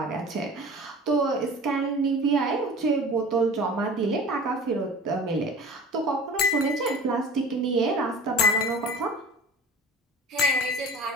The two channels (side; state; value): both; normal; correlation 0.40